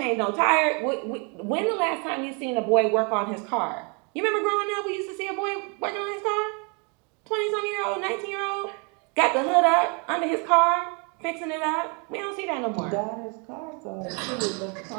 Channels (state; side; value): quieter; left; 34.3 dB